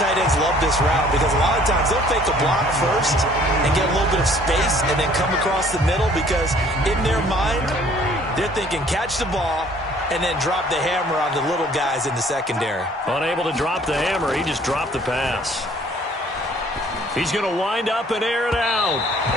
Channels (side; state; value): both; normal; correlation 0.57